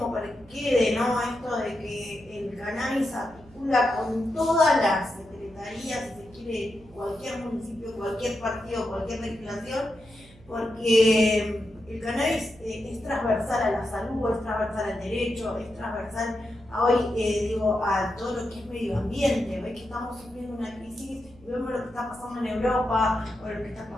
para que quede, ¿no? Esto de que el cannabis articula con todas las secretarías, si se quiere, cualquier municipio, cualquier partido, cualquier legislación, porque el cannabis es transversal a la salud, es transversal al derecho, es transversal a hoy, digo, a todo lo que es medio ambiente. Ves que estamos sufriendo una crisis, vemos lo que está pasando en Europa, o lo que está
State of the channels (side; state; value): right; noise; hum, 24 dB below the sound